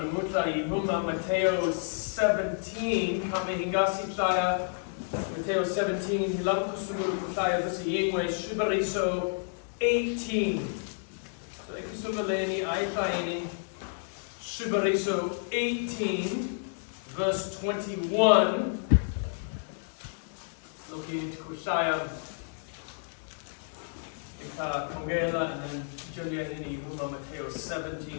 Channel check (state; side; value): silent; right; digital silence